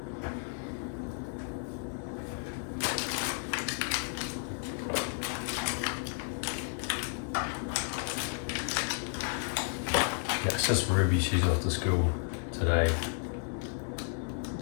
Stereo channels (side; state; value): right; silent; 56 dB below the other